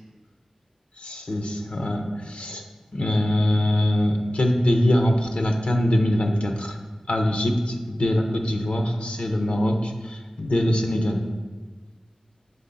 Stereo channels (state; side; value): normal; both; correlation 0.95